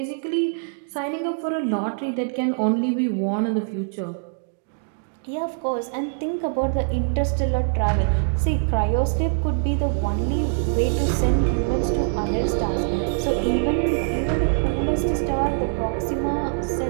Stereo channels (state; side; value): silent; left; digital silence